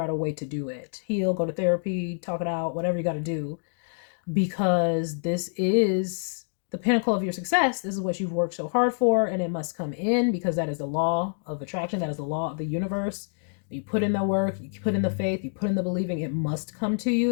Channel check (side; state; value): right; silent; digital silence